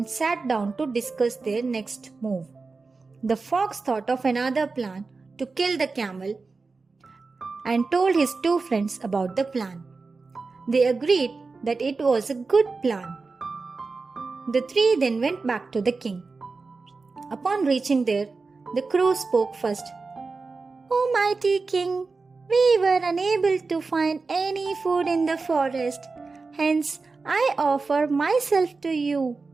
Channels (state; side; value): quieter; left; 4.1 dB